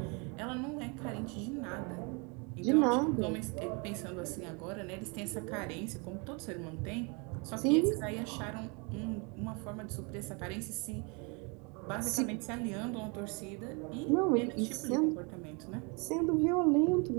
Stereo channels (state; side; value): quieter; left; 31.9 dB